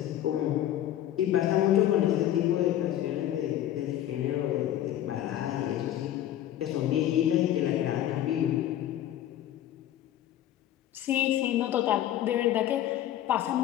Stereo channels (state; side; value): quieter; right; 12.2 dB